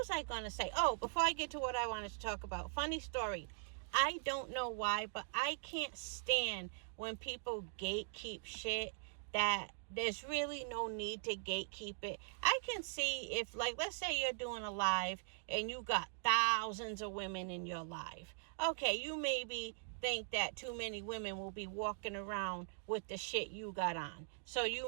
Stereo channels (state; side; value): silent; left; digital silence